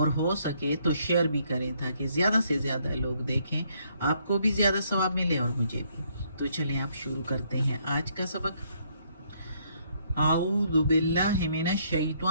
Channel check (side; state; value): both; inverted; correlation -0.69